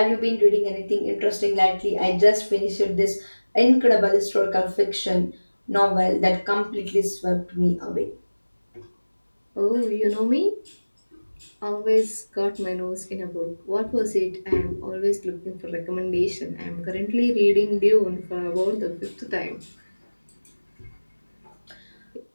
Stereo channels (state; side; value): inverted; both; correlation -1.00